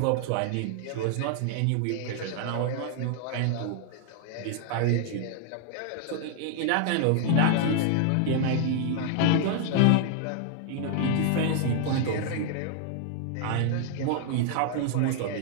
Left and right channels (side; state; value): both; different; correlation 0.00